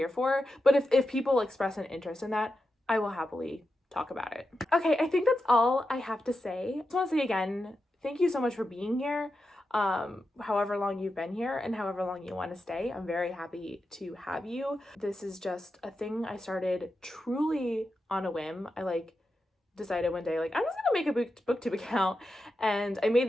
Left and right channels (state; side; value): normal; both; correlation 0.89